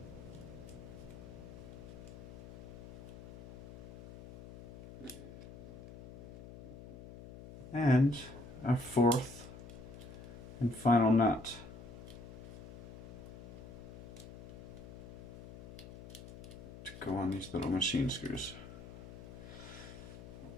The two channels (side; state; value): left; noise; hum, 14 dB below the sound